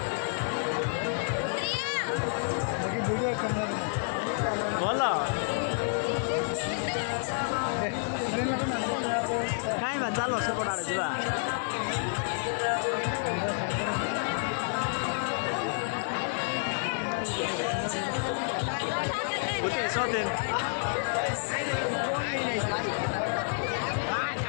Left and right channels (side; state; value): right; silent; digital silence